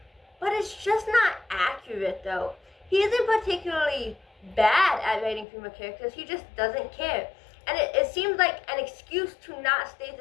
but it's just not accurate though. He isn't particularly bad at writing female characters, he just doesn't care. And it seems like an excuse to not state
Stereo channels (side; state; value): right; drops out; at 5.5 s